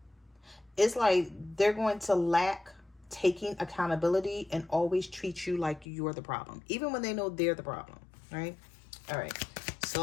it's like they're going to lack taking accountability and always treat you like you're the problem, even when they know they're the problem, right? All right, so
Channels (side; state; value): right; drops out; at 5.9 s